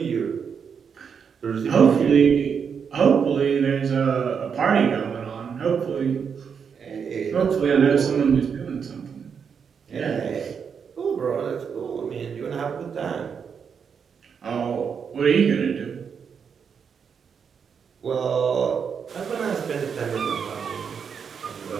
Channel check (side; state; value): left; quieter; 6.7 dB